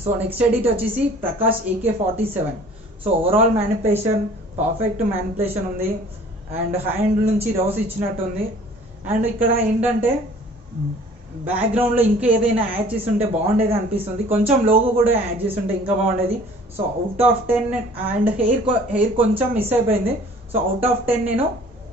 సో నెక్స్ట్ ఎడిట్ వచ్చేసి Prakash AK47. So overall manipulation perfect manipulation ఉంది. అండ్ హ్యాండ్ నుంచి రోస్ ఇచ్చినట్టుంది. అండ్ ఇక్కడ ఏంటంటే బ్యాక్గ్రౌండ్ లో ఇంకా ఏదైనా యాడ్ చేసి ఉంటే బాగుండేది అనిపిస్తుంది. కొంచెం లోగో కూడా యాడ్ చేసి ఉంటే ఇంకా బాగుండేది. So out of 10 and hair కొంచెం మిస్ అయిపోయింది. సో అవుట్ ఆఫ్ 10 నేను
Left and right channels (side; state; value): both; normal; correlation 0.51